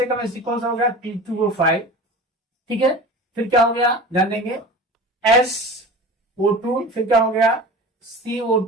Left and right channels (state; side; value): normal; both; correlation 0.36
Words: कम एसिडिक कौन सा हो गया, P2O5, ठीक है। फिर क्या हो गया, ध्यान देंगे, SO2, फिर क्या हो गया,